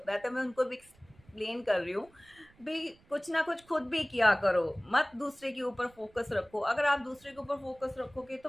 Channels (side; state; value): right; noise; rumble, 29 dB below the sound